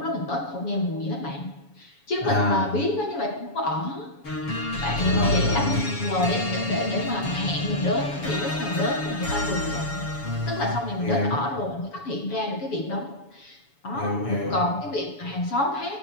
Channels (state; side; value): late; right; 7.1 ms